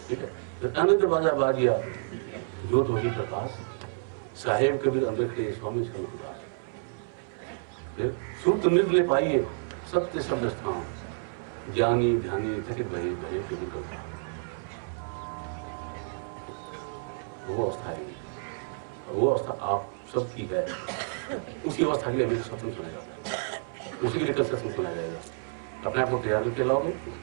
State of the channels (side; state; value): left; silent; 58 dB below the other